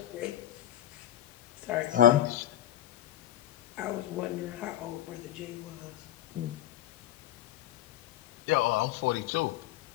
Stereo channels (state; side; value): quieter; right; 12.8 dB